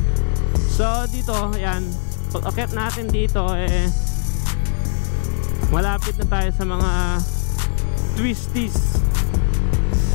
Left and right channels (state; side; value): silent; right; 66 dB below the other